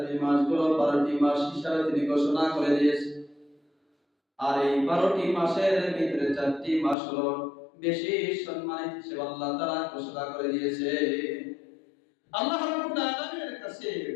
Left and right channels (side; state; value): right; drops out; at 7.0 s